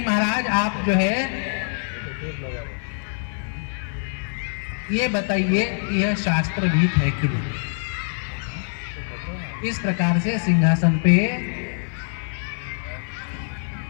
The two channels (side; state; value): right; silent; 57 dB below the other